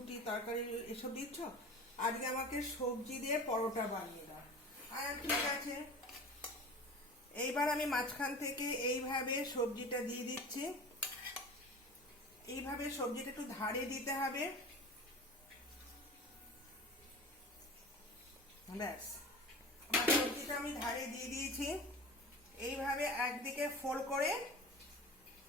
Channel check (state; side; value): normal; both; correlation 0.36